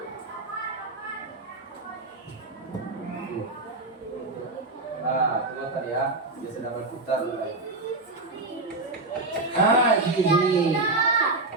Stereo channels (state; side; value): quieter; left; 3.1 dB